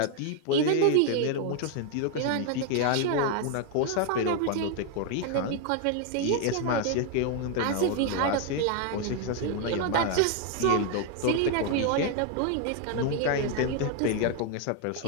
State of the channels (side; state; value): both; different; correlation 0.00